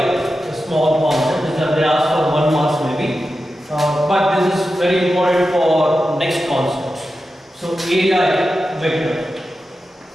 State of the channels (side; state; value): both; normal; correlation 0.91